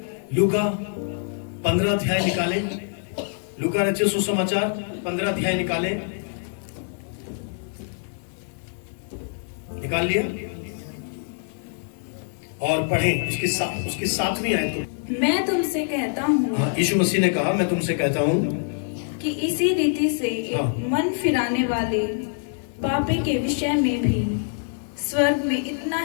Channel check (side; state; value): right; silent; 59 dB below the other